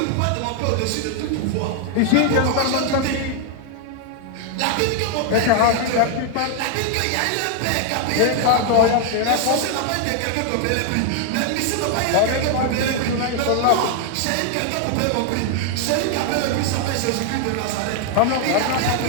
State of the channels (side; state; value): both; different; correlation 0.00